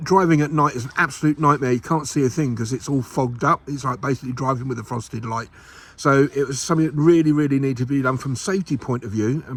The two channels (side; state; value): both; identical; correlation 1.00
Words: driving at night is an absolute nightmare. You can't see a thing because it's all fogged up. It's like basically driving with a frosted light. So it was something that really needed to be done from a safety point of view, and